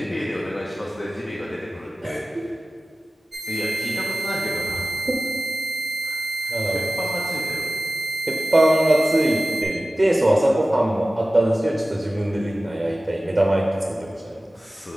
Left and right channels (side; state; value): both; normal; correlation 0.96